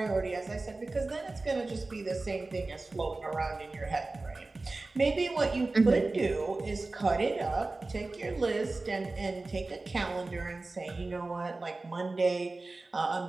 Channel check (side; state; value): left; quieter; 3.3 dB